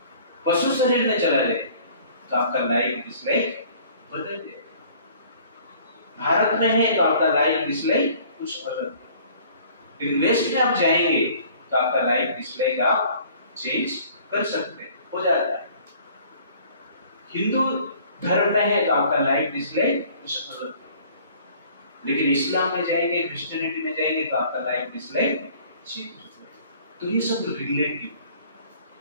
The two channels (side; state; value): both; inverted; correlation -0.53